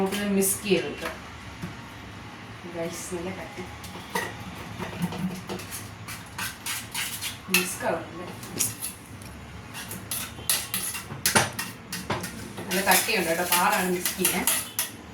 മിക്സ് ചെയ്തെടുക്കാം. നല്ല കട്ടി മിക്സ് ആവുന്നുണ്ട്. നല്ല കട്ടിയുണ്ട് കേട്ടോ, പാടാണ് മിക്സ് ചെയ്യാൻ.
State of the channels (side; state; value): both; identical; correlation 1.00